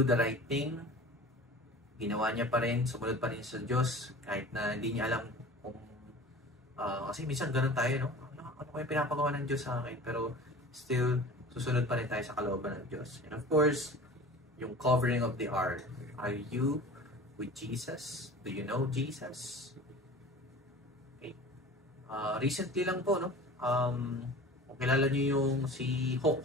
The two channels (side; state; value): both; normal; correlation 0.39